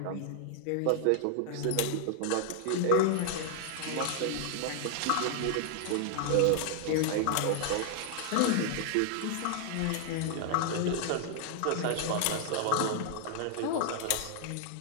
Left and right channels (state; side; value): different; both; correlation 0.00